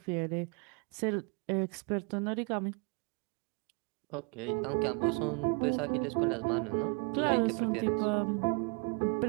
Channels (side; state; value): left; quieter; 34.5 dB